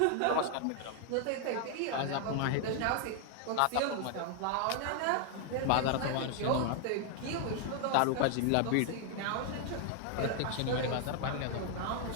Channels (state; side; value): different; both; correlation 0.00